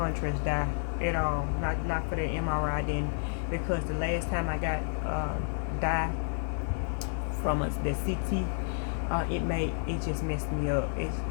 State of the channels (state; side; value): silent; right; digital silence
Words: dye at all. Not for the MRI. I didn't, because the last time I got dye from the CT, it just messed me up. It